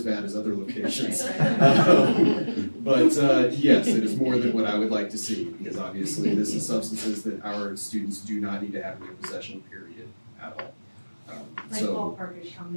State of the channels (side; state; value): both; inverted; correlation -1.00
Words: bad as other locations. But yes, it is more than what I would like to see, because obviously this is substances that our students do not need to have in their possession, period, at all. Like ballpark is how